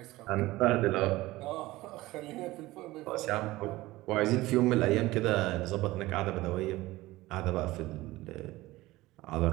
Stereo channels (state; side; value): quieter; left; 18.5 dB